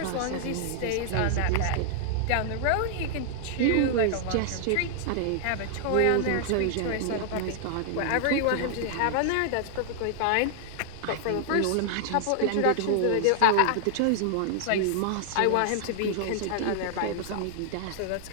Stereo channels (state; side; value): different; both; correlation 0.00